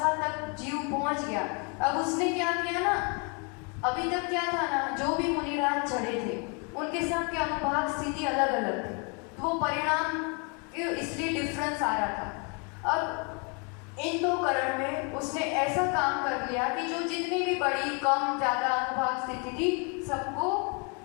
तक जीव पहुंच गया। अब उसने क्या किया ना, अभी तक क्या था ना, जो भी मुनिराज चढ़े थे उनके सब के अनुभाग स्थिति अलग अलग थी, तो वो परिणाम इसलिए डिफरेंस आ रहा था। अब इन दो करण में उसने ऐसा काम कर लिया कि जो जितनी भी बड़ी कम ज़्यादा अनुभाग स्थिति थी सबको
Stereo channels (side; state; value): right; quieter; 34.3 dB